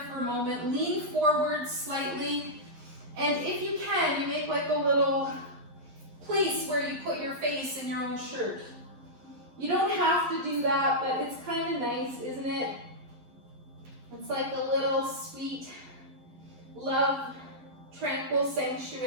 for a moment. Lean forward slightly. And if you can, you make like a little place where you put your face in your own shirt. You don't have to do that, but it's kind of nice, isn't it? It's like a little sweet, love, tranquil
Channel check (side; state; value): left; late; 11 ms